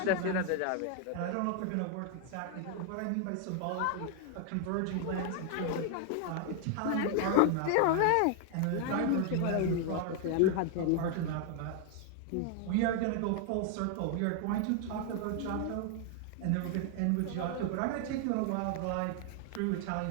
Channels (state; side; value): different; both; correlation 0.00